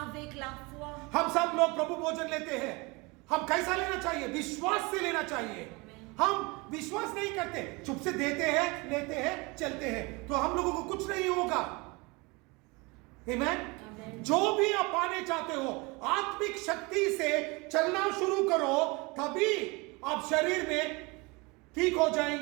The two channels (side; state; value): left; quieter; 26.3 dB